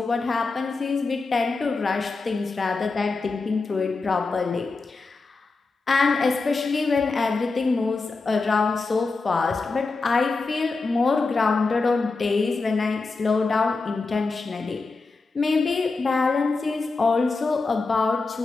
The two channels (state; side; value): quieter; right; 3.9 dB